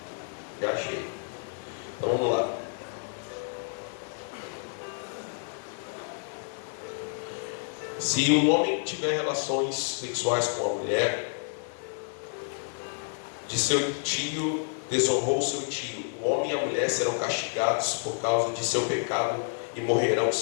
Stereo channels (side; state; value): right; silent; 56 dB below the other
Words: Já achei. Então vamos lá. Se um homem tiver relações sexuais com a mulher de seu tio, desonrou seu tio, o homem e a mulher serão castigados por causa de seu pecado e morrerão